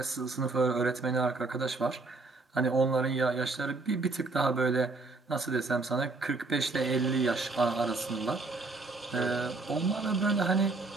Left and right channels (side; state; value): left; quieter; 3.5 dB